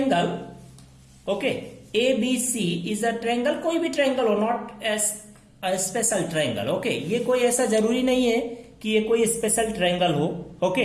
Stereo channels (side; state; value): both; identical; correlation 1.00